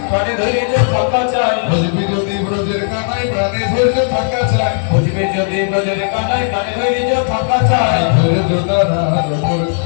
ধৈর্য থাকা চাই। বুঝবি যদি ব্রজের কানাই প্রাণে ধৈর্য থাকা চাই, বুঝবি যদি ব্রজের কানাই প্রাণে ধৈর্য থাকা চাই। ধৈর্য দ্বারার উপর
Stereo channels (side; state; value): right; silent; digital silence